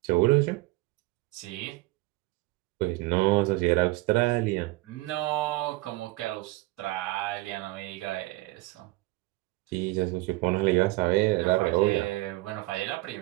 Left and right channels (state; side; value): quieter; left; 20.7 dB